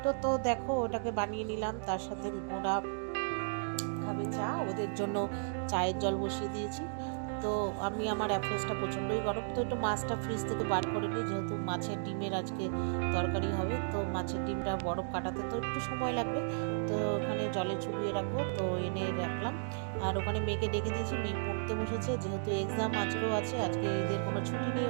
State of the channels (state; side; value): silent; left; digital silence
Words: তো দেখো ওটাকে বানিয়ে নিলাম। তার সাথে ওরা খাবে চা, ওদের জন্য চায়ের জল বসিয়ে দিয়েছি। তো আমি আমার অ্যাপ্রোচটা প্রচণ্ডই গরম, তো একটু মাছটা ফ্রিজ থেকে বার করে নিই, যেহেতু মাছের ডিমের আজকে তরকারি হবে। তো মাছের ডিমটা বরফ কাটাতে তো একটু সময় লাগবে। তো ওখানে জলে চুবিয়ে রাখবো, তো এনে রাখলাম। আর ওখানে মেয়েকে ডেকে দিয়েছি, মেয়ে পড়তে বসেছে, যেহেতু এক্সাম আজকেও আছে, আজকে এদের কোনো ছুটি নেই,